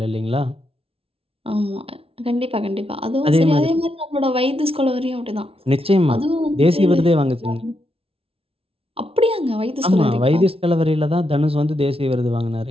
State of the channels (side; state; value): left; late; 0.27 ms